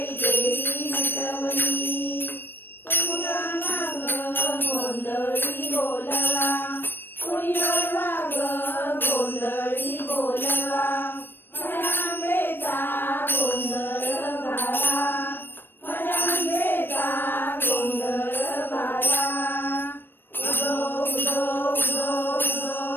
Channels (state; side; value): late; right; 0.097 ms